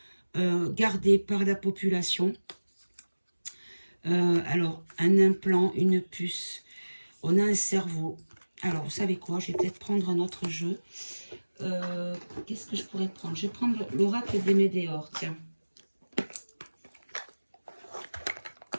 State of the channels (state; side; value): inverted; both; correlation -1.00